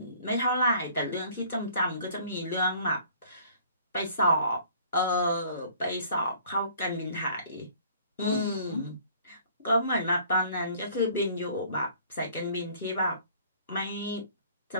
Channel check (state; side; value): inverted; both; correlation -0.54